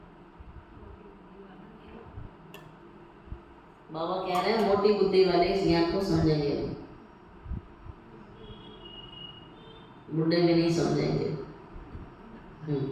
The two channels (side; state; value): both; identical; correlation 1.00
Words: बाबा कह रहे हैं मोटी बुद्धि वाले इस ज्ञान को समझेंगे, बुढ़े भी नहीं समझेंगे।